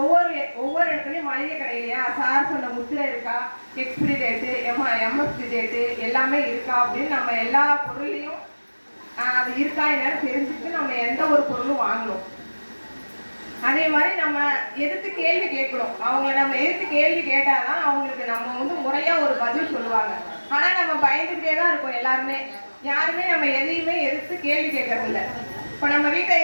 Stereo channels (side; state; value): both; inverted; correlation -1.00